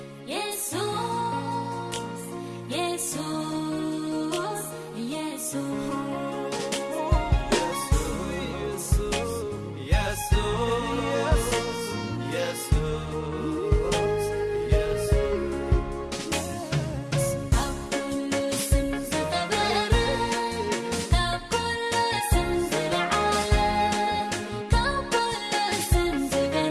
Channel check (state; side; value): identical; both; correlation 1.00